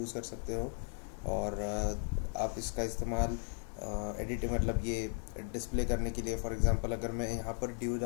कर सकते हो, और आप इसका इस्तेमाल एडिटिंग मतलब ये डिस्प्ले करने के लिए। फॉर एग्ज़ाम्पल अगर मैं यहाँ पर div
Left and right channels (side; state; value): right; silent; 54 dB below the other